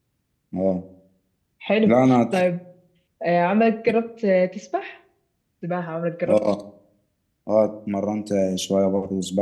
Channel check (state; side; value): identical; both; correlation 1.00